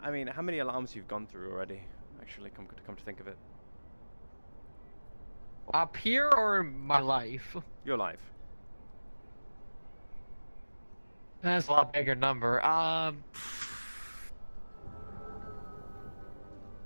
how many alarms you've gone through already? Actually, come to think of it. Up here or in my life? Your life. That's a lot bigger number. At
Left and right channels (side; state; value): both; inverted; correlation -1.00